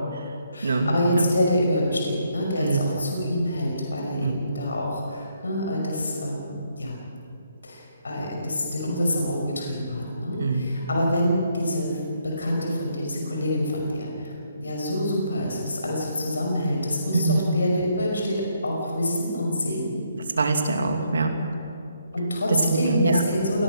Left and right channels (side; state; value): both; inverted; correlation -0.74